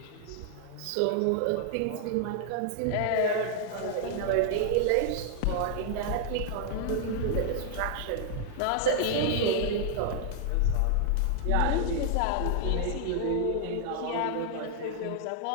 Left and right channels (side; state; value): both; different; correlation 0.00